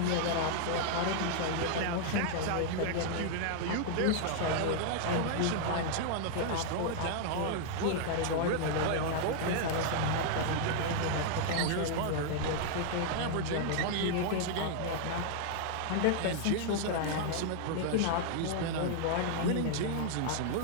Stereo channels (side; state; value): both; different; correlation -0.01